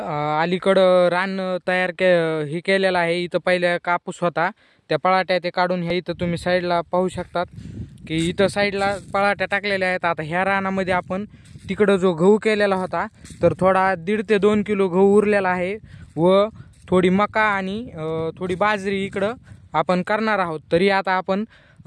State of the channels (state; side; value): identical; both; correlation 1.00